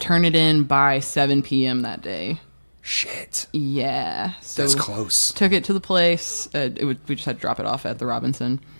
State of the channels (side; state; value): both; inverted; correlation -1.00